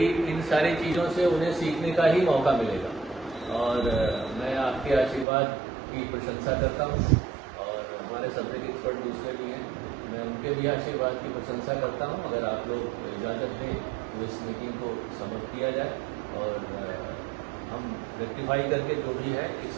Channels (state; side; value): drops out; left; at 5.2 s